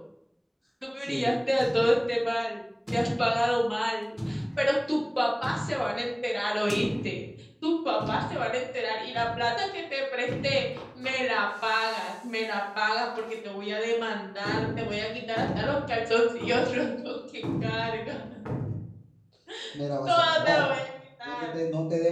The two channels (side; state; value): both; identical; correlation 1.00